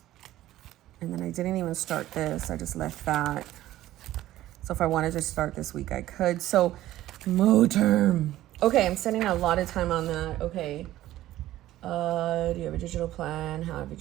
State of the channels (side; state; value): left; quieter; 14.5 dB